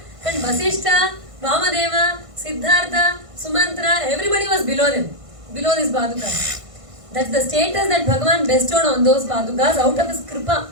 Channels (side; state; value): left; late; 1.5 ms